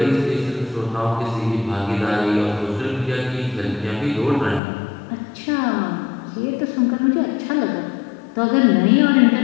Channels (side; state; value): right; drops out; at 4.6 s